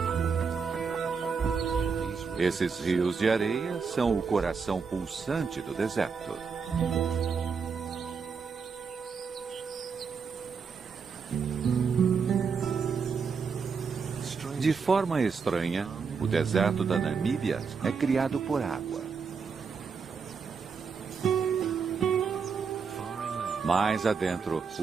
Esses rios de areia são o coração pulsante do deserto. De forma estranha, o deserto da Namíbia é criado por água. Mais adentro,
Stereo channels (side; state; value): left; quieter; 5.6 dB